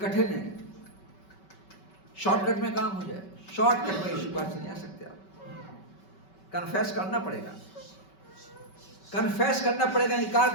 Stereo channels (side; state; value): right; late; 5.2 ms